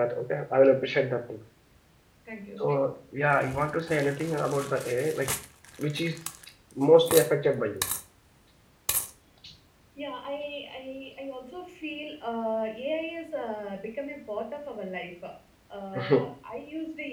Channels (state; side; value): identical; both; correlation 1.00